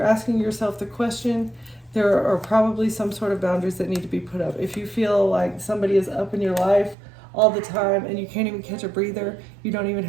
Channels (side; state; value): left; drops out; at 7.0 s